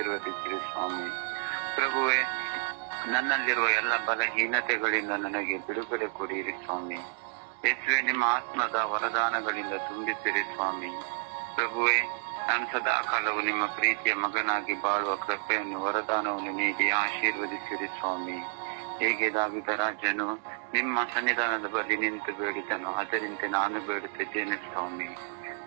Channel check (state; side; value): silent; left; 58 dB below the other